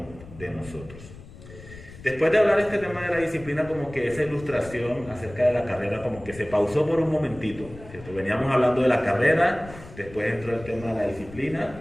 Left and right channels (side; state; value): left; noise; rumble, 17 dB below the sound